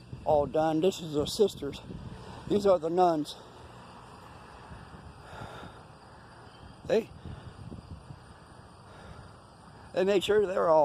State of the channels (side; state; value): both; identical; correlation 1.00